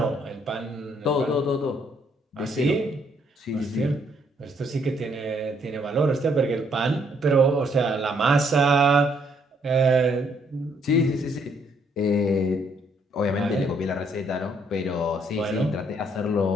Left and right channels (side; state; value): both; normal; correlation 0.69